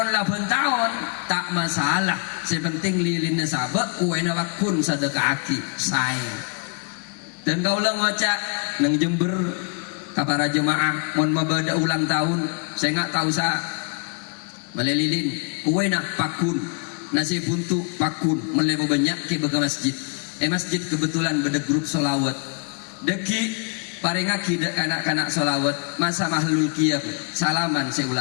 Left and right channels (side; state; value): right; quieter; 37.9 dB